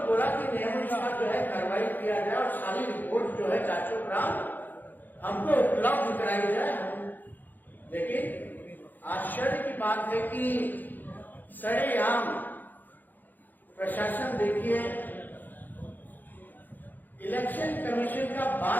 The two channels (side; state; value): right; late; 0.086 ms